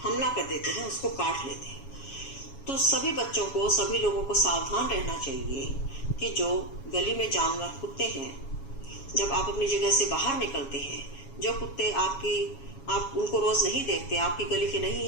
हमला कर देते हैं, उसको काट लेते हैं। तो सभी बच्चों को, सभी लोगों को सावधान रहना चाहिए कि जो गली में जानवर कुत्ते हैं, जब आप अपनी जगह से बाहर निकलते हैं, जो कुत्ते आप उनको रोज नहीं देखते, आपकी गली के नहीं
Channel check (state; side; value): late; right; 7.2 ms